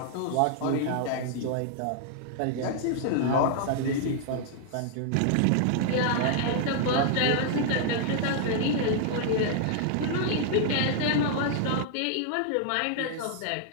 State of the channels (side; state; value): both; different; correlation -0.01